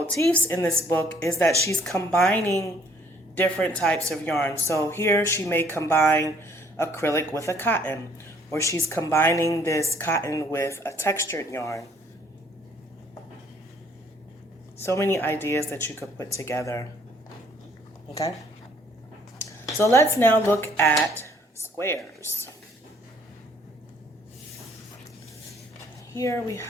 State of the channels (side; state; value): both; normal; correlation 0.61